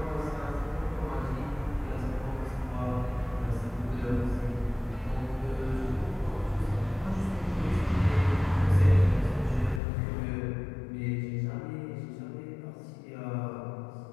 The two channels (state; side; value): drops out; right; at 9.8 s